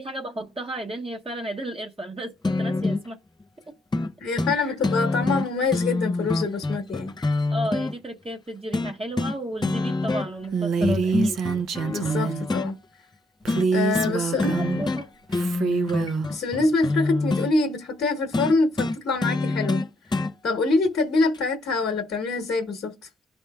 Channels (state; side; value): normal; both; correlation 0.73